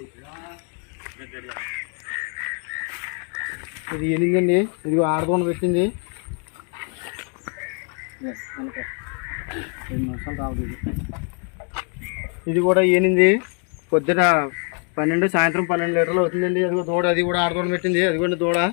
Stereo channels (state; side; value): quieter; right; 39.6 dB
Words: ఇది ఎనిమిదండి, ఇదిగో ఆడదోన పెట్టింది. 2 నిమిషాలు రావద్దు. ఇది కూడా ఏనింది, పొద్దున 12 సాయంత్రం 12 లీటర్లు అవుతుందండి. అదిగో దూడ, అది కూడా ఆడదోడ పెట్టింది. అదిగోండి దూడ,